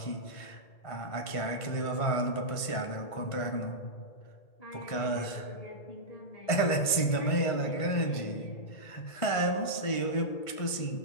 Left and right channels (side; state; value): right; late; 1.5 ms